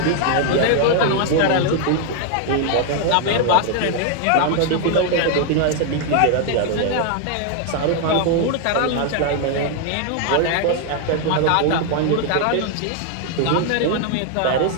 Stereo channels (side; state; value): both; different; correlation 0.00